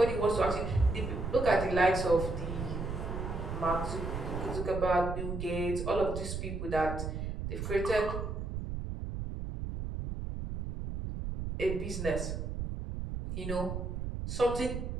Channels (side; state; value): right; noise; rumble, 4 dB below the sound